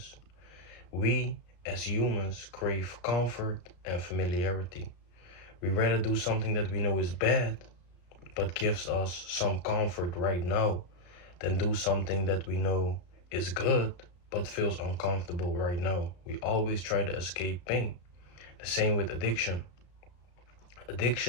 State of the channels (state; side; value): late; right; 34 ms